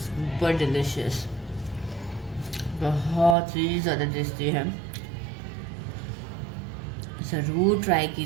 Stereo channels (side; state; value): left; drops out; at 3.4 s